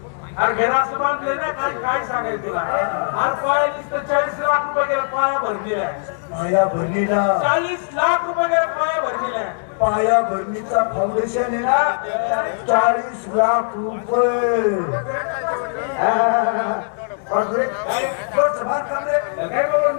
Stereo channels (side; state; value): right; silent; digital silence